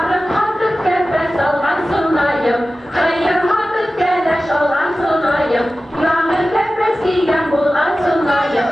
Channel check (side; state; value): both; normal; correlation 0.95